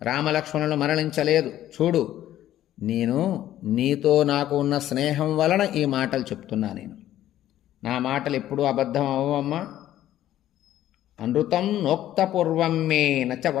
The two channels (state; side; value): quieter; right; 12.8 dB